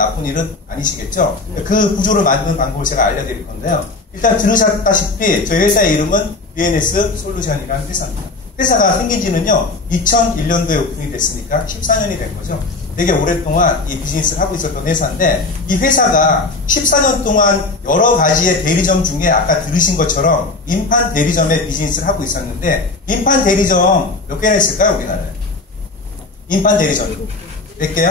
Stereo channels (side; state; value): right; quieter; 3.5 dB